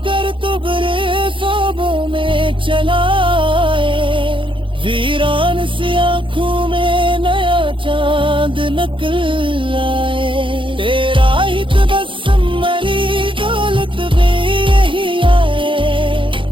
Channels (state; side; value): late; left; 0.25 ms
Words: कर तो बरे ख्वाबों में चलाए, वीरान सी आंखों में नया चांद निकल आए। तेरा ही तबस्सुम मेरी दौलत भी यही आए,